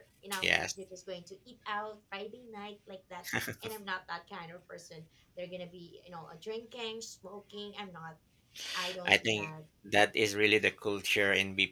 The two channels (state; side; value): identical; both; correlation 1.00